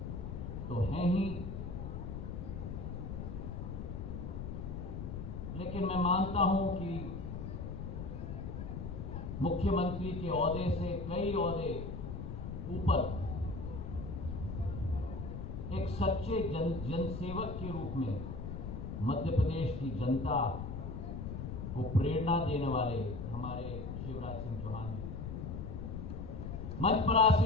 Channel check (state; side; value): noise; left; rumble, 6 dB below the sound